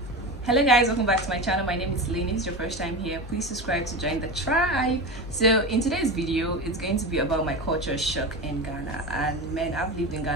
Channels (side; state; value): both; normal; correlation 0.24